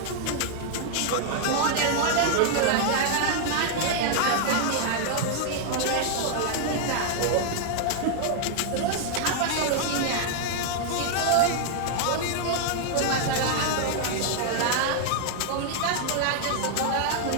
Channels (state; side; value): different; both; correlation 0.00